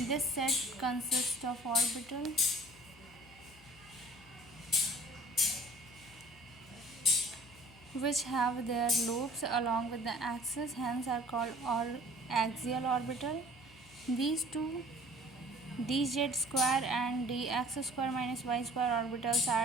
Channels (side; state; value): left; noise; hum, 24 dB below the sound